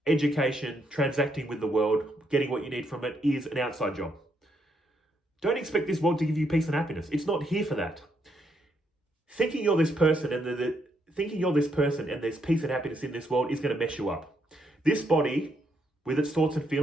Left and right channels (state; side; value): normal; both; correlation 0.76